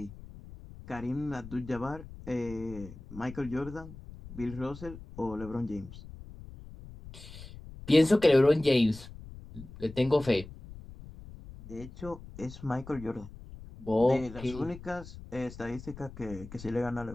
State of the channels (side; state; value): left; noise; rumble, 15 dB below the sound